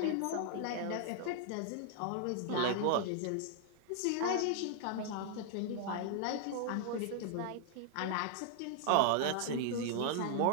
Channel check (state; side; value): different; both; correlation 0.00